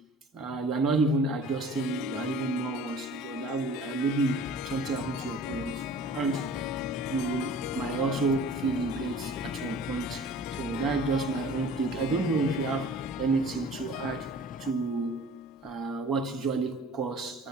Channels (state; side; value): normal; both; correlation 0.46